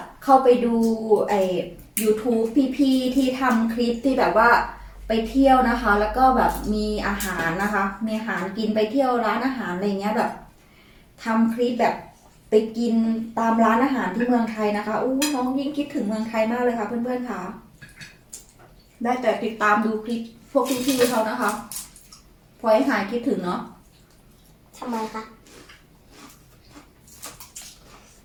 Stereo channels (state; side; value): identical; both; correlation 1.00